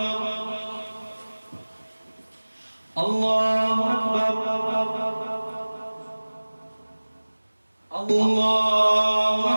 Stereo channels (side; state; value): both; inverted; correlation -1.00